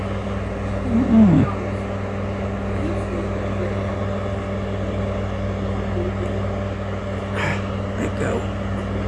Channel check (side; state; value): both; identical; correlation 1.00